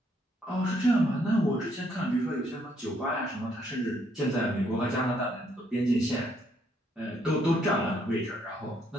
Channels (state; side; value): normal; both; correlation 0.70